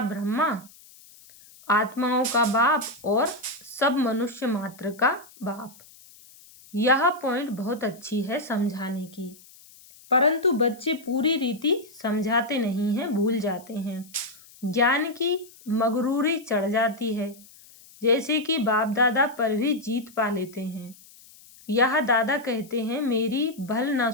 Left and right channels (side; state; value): left; noise; hiss, 23 dB below the sound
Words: ब्रह्मा आत्माओं का बाप और सब मनुष्य मात्र का बाप। यह पॉइंट बहुत अच्छी है समझाने की, परंतु बच्चे पूरी रीति समझाते नहीं हैं, भूल जाते हैं। ज्ञान की मगरूरी चढ़ जाती है, जैसे कि बाप दादा पर भी जीत पा लेते हैं। यह दादा कहते हैं, मेरी भल ना